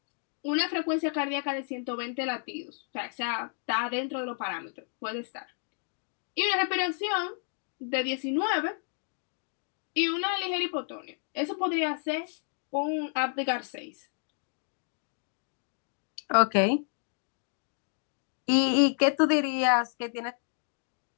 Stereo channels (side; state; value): right; silent; 57 dB below the other